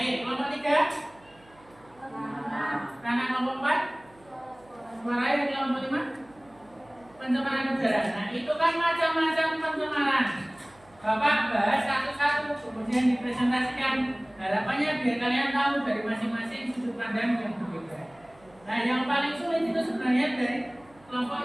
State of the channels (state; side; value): noise; right; hum, 29 dB below the sound